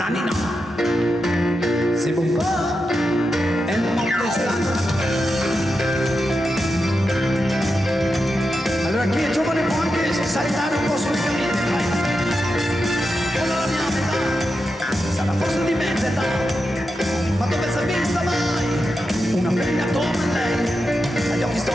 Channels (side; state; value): both; normal; correlation 0.88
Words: Saltare un po' sulle camite, vai! Con la mia metà, sarà forse di mezza età, ma dove si è vista mai? Una femmina come lei, agli occhi